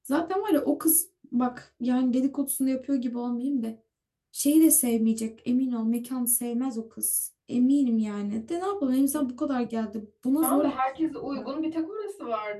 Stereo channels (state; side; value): identical; both; correlation 1.00